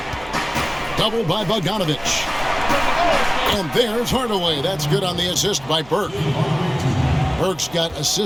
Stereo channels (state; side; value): noise; right; hum, 22 dB below the sound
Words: Double by Bogdanović. And there's Hardaway. That's good on the assist by Burke. Burke's got